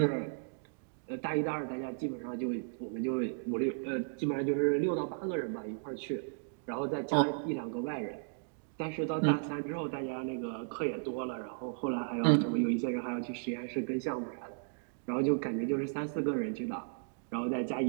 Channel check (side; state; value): left; silent; digital silence